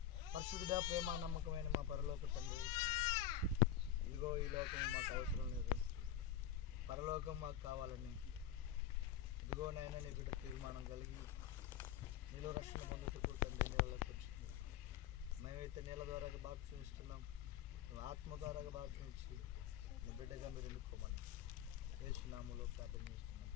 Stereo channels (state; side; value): quieter; right; 10.2 dB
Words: పరిశుద్ధుడా ప్రేమ నమ్మకమైన మా పరలోక తండ్రి, ఇదిగో ఈ లోకం మాకు అవసరం లేదు, పరలోకం మాకు కావాలని ఇదిగో నాయన నీ బిడ్డ తీర్మానం కలిగి నీలో రక్షణ పొందుటకు తండ్రి నీళ్ళకి వచ్చింది. మేమైతే నీళ్ళ ద్వారా బాప్తిసం ఇస్తున్నాం, నువ్వు ఆత్మ ద్వారా బాప్తిసం ఇచ్చి నీ బిడ్డగా మీరు ఎన్నుకోమని యేసు నామములో ప్రార్థన చేస్తున్నాం